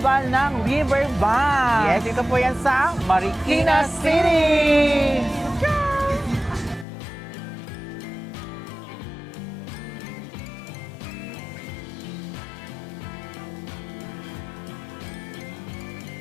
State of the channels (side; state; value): right; drops out; at 6.9 s